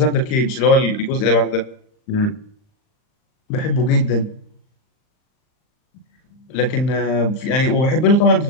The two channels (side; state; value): right; late; 39 ms